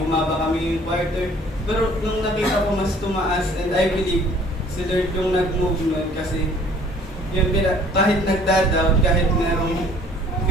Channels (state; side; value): normal; both; correlation 0.55